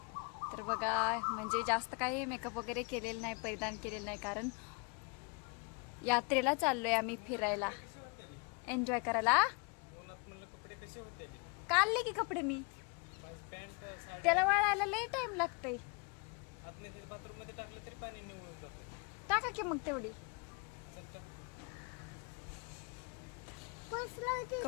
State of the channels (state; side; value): quieter; right; 32.2 dB